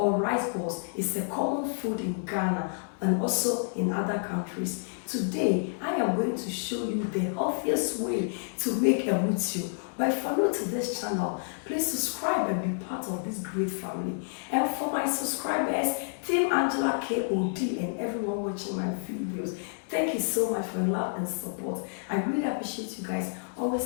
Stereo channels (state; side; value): silent; right; digital silence